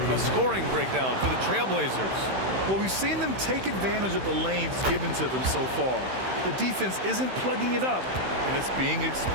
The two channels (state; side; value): late; left; 16 ms